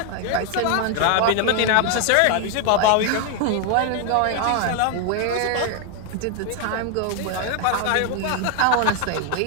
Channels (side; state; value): both; different; correlation 0.00